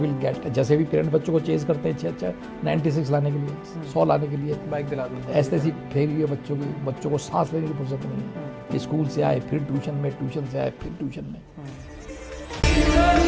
will get, जैसे भी parents बच्चों को chase करते हैं अच्छा 96 लाने के लिए, 100 लाने के लिए, बाइक दिला दो. ऐसे ऐसी फेरी हुई है बच्चों को सांस लेने की फुर्सत नहीं है. स्कूल से आए फिर ट्यूशन में, ट्यूशन से आए फिर ट्यूशन में.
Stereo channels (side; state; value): both; identical; correlation 1.00